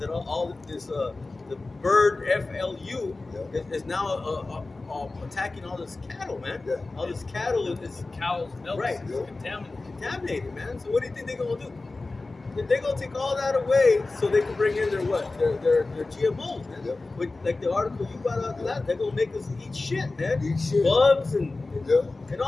all this, the bird FLU is now attacking all this cattle, man. Yeah. All this cattle is Cows, milk, Right. is contaminated. contaminated, man. So what do you think they're gonna do? They're gonna take all that away so they can bring in their what? Their GMOs, man. Yep. With, like the article you brought out that they're gonna make us eat shit, man. Eat shit. Bugs and yeah, and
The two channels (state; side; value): quieter; right; 3.4 dB